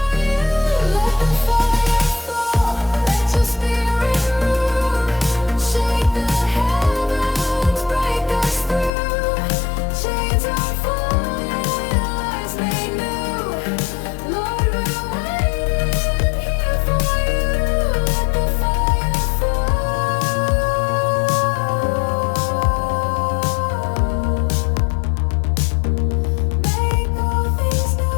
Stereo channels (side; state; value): right; drops out; at 8.9 s